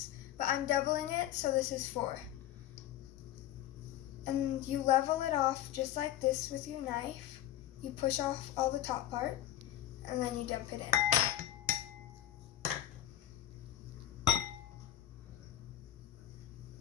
but I'm doubling it, so this is 4. And you level it off just like this with your knife. You push off all the top part, and then you dump it in.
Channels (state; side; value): quieter; right; 12.5 dB